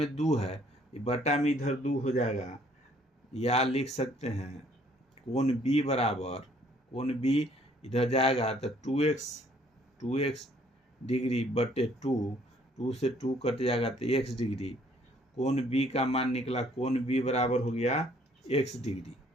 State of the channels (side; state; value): both; normal; correlation 0.62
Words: 2 है, ये बटा में इधर 2 हो जाएगा, या लिख सकते हैं कोण b बराबर, कोण b इधर जाएगा तो 2x डिग्री बटे 2 से 2 कट जाएगा तो x डिग्री, कोण b का मान निकला, कोण b बराबर हो गया x डिग्री,